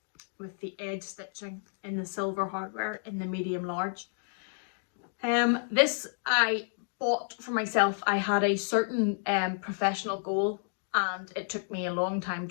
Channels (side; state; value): right; silent; digital silence